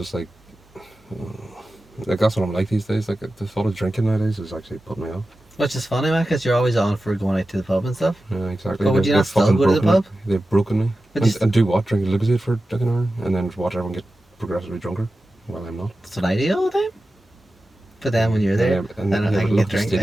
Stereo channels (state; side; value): normal; both; correlation 0.94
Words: like that's what I'm like these days. Like the thought of drinking nowadays is actually putting me off. Which is funny, man, because you're always on for going out to the pub and stuff. Yeah, exactly. But would you not still go to the pub? They've broken me. And do what? Drink Lucozade for like an hour, and then watch everyone get progressively drunker. Well, I'm not. That's what I do all the time. But then when you're there, And then I can get